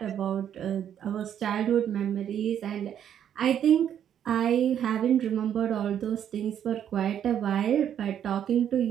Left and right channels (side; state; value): left; quieter; 9.5 dB